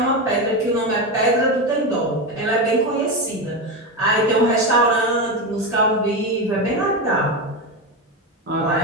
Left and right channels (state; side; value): normal; both; correlation 0.15